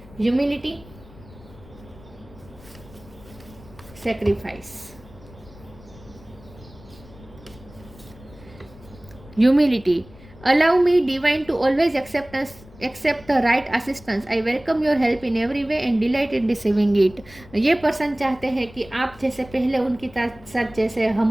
humility, sacrifice, humility, allow me divine to always accept the right assistance, I welcome your help in every way and delight in receiving it। ये पर्सन चाहते हैं कि आप जैसे पहले उनकी साथ जैसे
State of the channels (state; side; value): noise; left; rumble, 21 dB below the sound